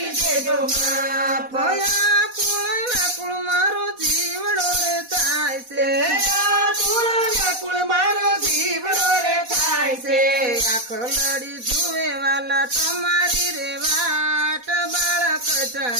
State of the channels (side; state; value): left; late; 4.1 ms